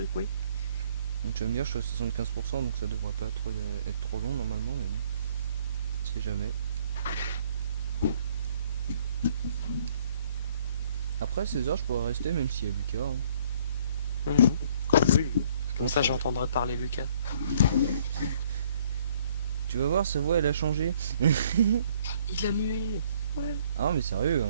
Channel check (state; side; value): inverted; both; correlation -0.61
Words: oui. Donc tu vas me dire je suis à 75% donc ça devrait pas être trop long normalement mais bon. On sait jamais. Après 16 heures je pourrais rester même s'il y a Lucas. Hein. Mhm. Oui. Je Comme pense ça, qu'il va- j'entendrai parler Lucas. Tu vas voir sa voix elle a changé. Il a mué. Ouais. Ah mais sérieux